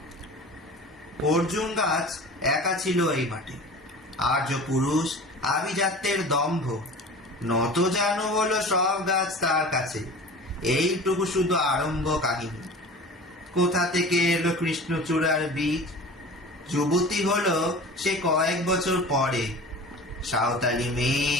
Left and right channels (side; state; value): both; normal; correlation 0.39